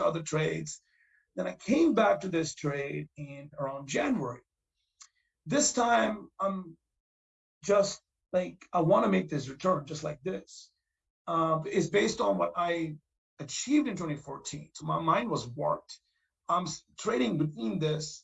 other trades. Then I came back to this trade in around January. This time, I'm just like, I want to make this return just like this. It's based on what I achieved in 2014. So my mind was warped. I'm trading between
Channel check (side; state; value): both; identical; correlation 1.00